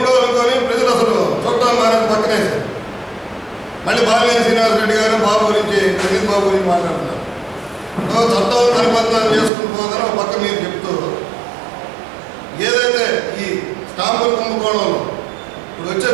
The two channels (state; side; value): drops out; left; at 9.5 s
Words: అనుకొని ప్రజలు అసలు చూడటానికి మానేసి పక్కనేసారు. మళ్ళీ బాలినేని శ్రీనివాస్ రెడ్డి గారు బాబు గురించి ప్రదీప్ బాబు గురించి మాట్లాడుతున్నారు. చట్టం పరిపత్నాలు చేసుకుని పోదని ఒక పక్క మీరు చెప్తూ ఏదైతే ఈ స్టాంపుల కుంభకోణంలో ఇప్పుడు వచ్చే